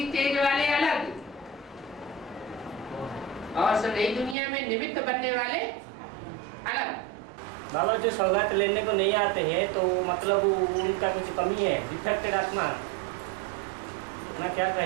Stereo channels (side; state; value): left; drops out; at 4.4 s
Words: स्टेज वाले अलग और नई दुनिया में निमित्त बनने वाले अलग। बाबा जो सौगात लेने को नहीं आते हैं तो मतलब उनका कुछ कमी है, डिफेक्टेड आत्मा ना, क्या